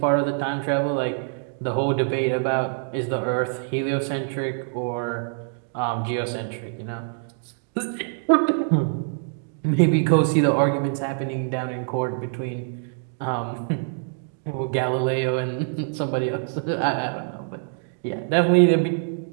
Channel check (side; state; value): left; silent; digital silence